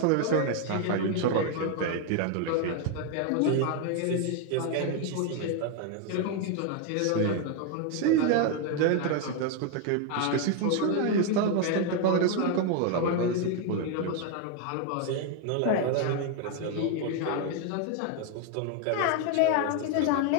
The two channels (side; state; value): both; different; correlation 0.01